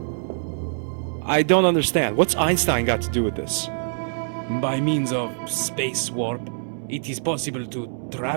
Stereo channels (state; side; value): silent; left; digital silence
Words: I don't understand. What's Einstein got to do with this? By means of space warp, it is possible to